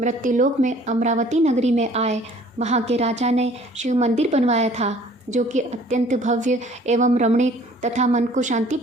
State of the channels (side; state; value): both; normal; correlation 0.54